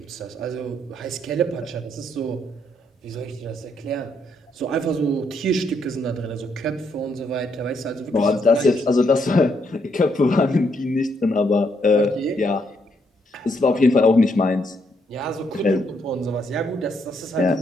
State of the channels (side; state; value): both; normal; correlation 0.74